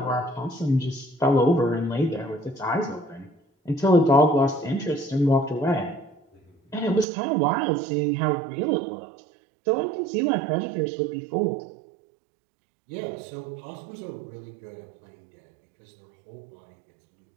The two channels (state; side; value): drops out; left; at 7.1 s